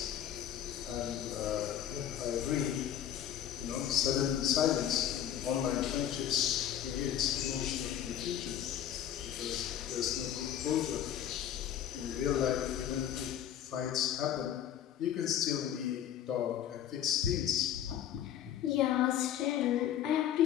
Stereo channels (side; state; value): right; quieter; 10.5 dB